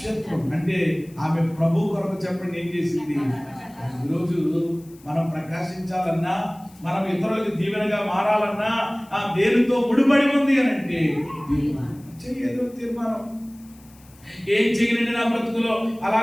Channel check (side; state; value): left; noise; hiss, 27 dB below the sound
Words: అంటే ఆమె ప్రభు కొరకు చెప్పండి ఏం చేసింది? ఈరోజు మనం ప్రకాశించాలన్నా, మనం ఇతరులకు దీవెనగా మారాలన్నా ఆ దేనితో ముడిపడి ఉంది అని అంటే ఏదో తీర్మానం. ఏం చేయనండి నా బ్రతుకులో అలా